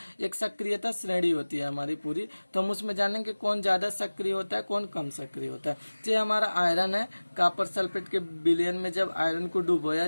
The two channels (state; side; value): inverted; both; correlation -1.00